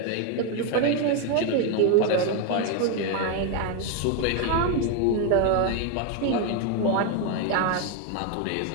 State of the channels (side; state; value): both; different; correlation 0.01